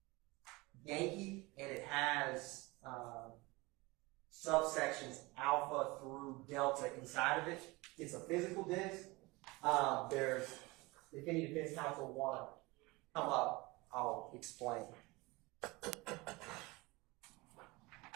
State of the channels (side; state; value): left; quieter; 23.3 dB